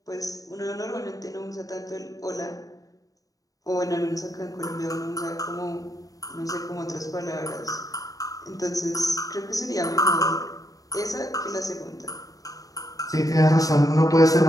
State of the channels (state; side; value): late; right; 0.17 ms